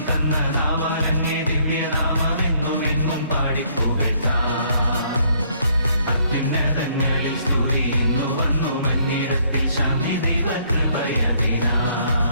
തന്ന നാവാലങ്ങേ ദിവ്യനാമമെന്നുമെന്നും പാടിപ്പുകഴ്ത്താം. അത്യുന്നതങ്ങളിൽ സ്തുതി ഇന്നു വന്നു മന്നിടത്തിൽ ശാന്തി ദൈവകൃപയതിനാൽ.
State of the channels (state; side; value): inverted; both; correlation -0.65